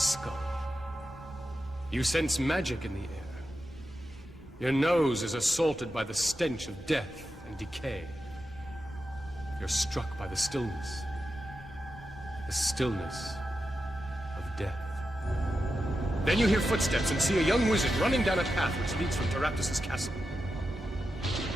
You sense magic in the air. Your nose is assaulted by the stench of death and decay. You're struck by the stillness. The stillness of death. Then you hear footsteps and see a young wizard running down a path which leads from Teraptus' castle.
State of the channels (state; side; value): normal; both; correlation 0.90